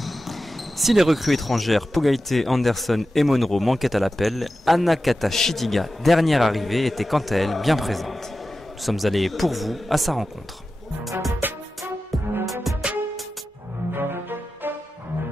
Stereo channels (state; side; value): normal; both; correlation 0.93